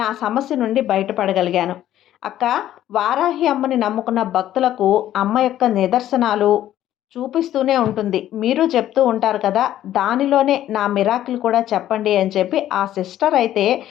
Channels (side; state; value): right; quieter; 12.5 dB